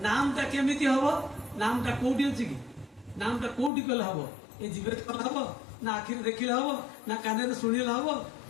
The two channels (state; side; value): drops out; right; at 3.7 s